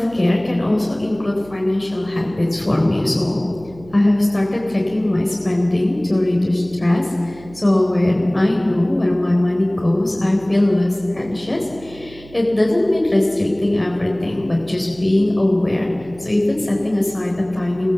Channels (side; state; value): right; noise; hum, 21 dB below the sound